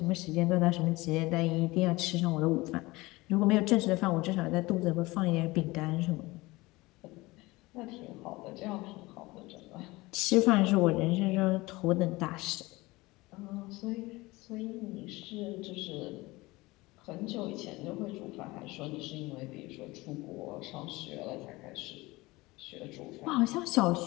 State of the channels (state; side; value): quieter; right; 21.3 dB